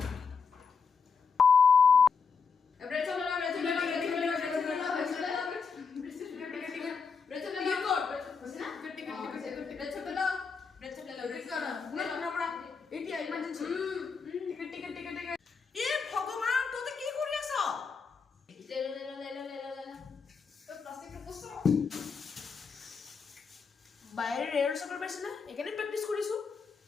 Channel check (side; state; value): right; quieter; 5.5 dB